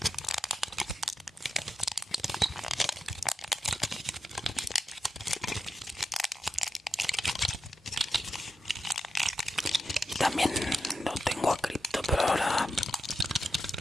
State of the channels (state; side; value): normal; both; correlation 0.88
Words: Y también lo tengo a Crypto, pero ahora